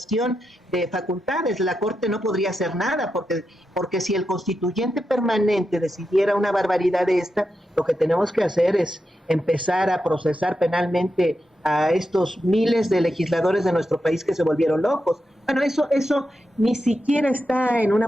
de facultades, la Corte no podría hacer nada, porque si el constituyente permanente decidiera una barbaridad de esta, lo que tenemos que hacer es empezar a procesar penalmente a estos miles de legisladores de nuestro país que se volvieron locos. Bueno, eso ni siquiera está en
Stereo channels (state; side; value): normal; both; correlation 0.87